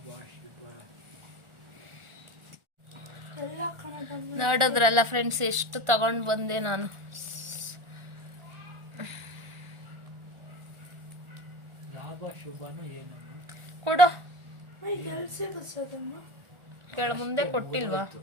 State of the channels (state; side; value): late; left; 1.4 ms